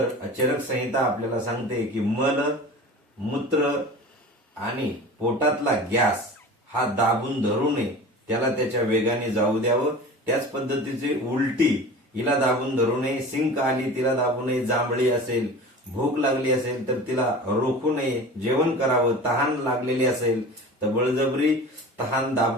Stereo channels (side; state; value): both; normal; correlation 0.36